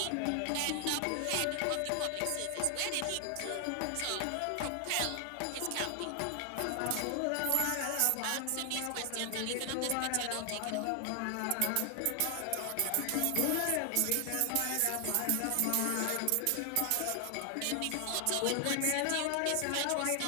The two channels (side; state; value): both; different; correlation 0.00